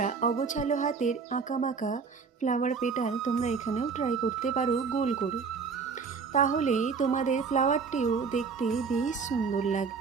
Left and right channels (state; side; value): quieter; left; 5.3 dB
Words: অগোছালো হাতের আঁকাবাঁকা ফ্লাওয়ার পেটাল তোমরা এখানেও ট্রাই করতে পারো গোল করে। তাহলে তোমাদের ফ্লাওয়ারটিও দেখতে বেশ সুন্দর